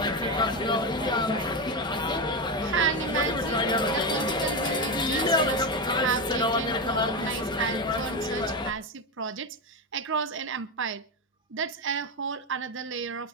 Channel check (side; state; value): both; normal; correlation 0.14